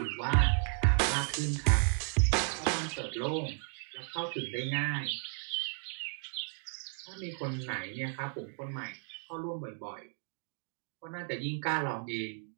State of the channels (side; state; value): left; silent; 55 dB below the other